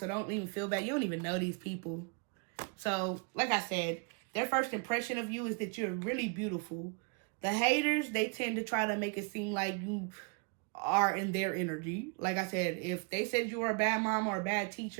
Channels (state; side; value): quieter; left; 36.3 dB